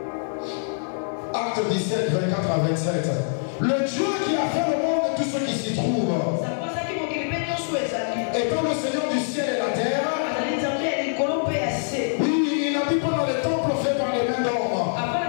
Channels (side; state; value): right; silent; digital silence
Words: Acte 17, 24 à 27. Le Dieu qui a fait le monde et tout ce qui s'y trouve, étant le Seigneur du ciel et la terre, oui, il n'habite pas dans les temples faits par les mains d'hommes.